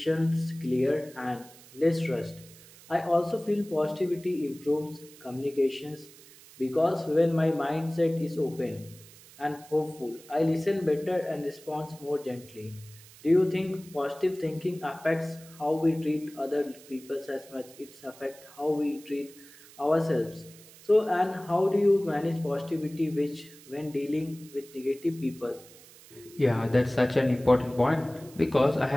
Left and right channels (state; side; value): noise; right; hiss, 21 dB below the sound